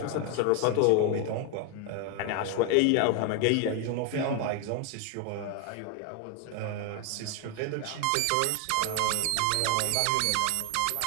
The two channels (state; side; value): different; both; correlation 0.01